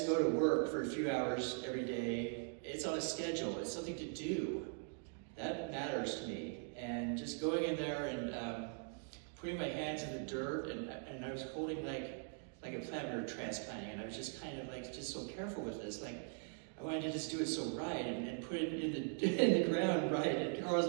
go to work for a few hours every day, it's on a schedule, it's something to do. That matters to me. And just going in there and putting my hands in the dirt, and I was holding like a plant we were transplanting, and I was just kind of just so careful with this. I wanted to just do it so right and put it in the ground right. And Carl was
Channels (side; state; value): left; silent; 50 dB below the other